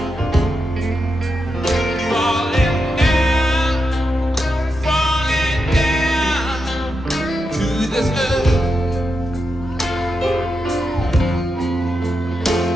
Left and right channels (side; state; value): both; normal; correlation 0.86